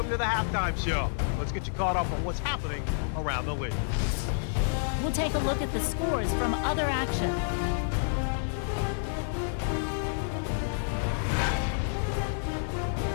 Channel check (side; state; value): right; silent; 58 dB below the other